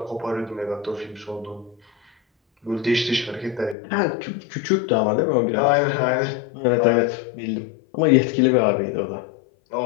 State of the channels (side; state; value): right; drops out; at 3.8 s